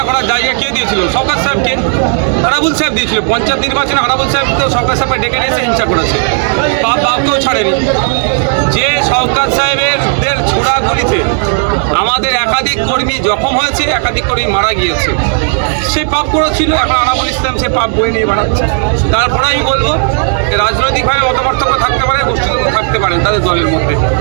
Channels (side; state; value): left; silent; 61 dB below the other